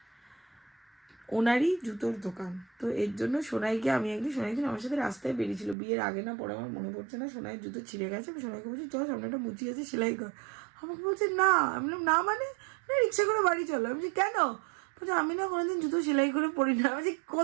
ওনারই জুতোর দোকান। তো এর জন্য সোনাইকে আমি সোনাইকে আমার সাথে রাস্তায় বেরিয়েছিল বিয়ের আগে না পরে আমার মনে পড়ছে না, সোনাইয়ের জুতো ছিঁড়ে গেছে। আমি সোনাইকে বলছি চল সামনে একটা মুচি আছে সেলাই কর। আমাকে বলছে না। আমি বললাম না মানে, না রিক্সা করে বাড়ি চলো। আমি বলছি কেন? বলছে আমি না কোনোদিন জুতো সেলাই করে পড়ি না। আমি বলছি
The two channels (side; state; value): left; drops out; at 5.8 s